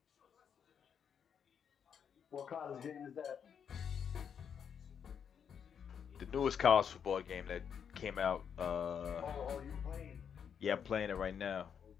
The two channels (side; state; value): right; quieter; 7.6 dB